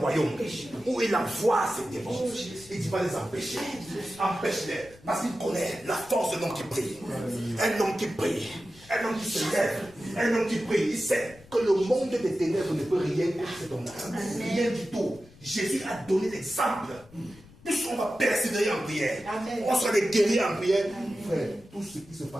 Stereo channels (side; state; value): left; noise; rumble, 24 dB below the sound